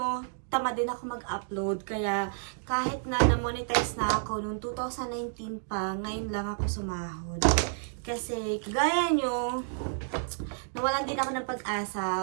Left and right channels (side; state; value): left; silent; digital silence